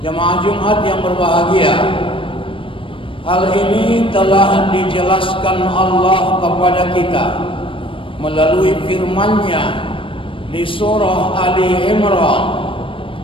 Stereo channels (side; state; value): right; late; 0.25 ms